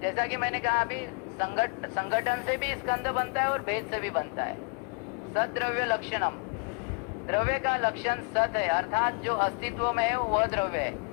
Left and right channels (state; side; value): quieter; right; 38.2 dB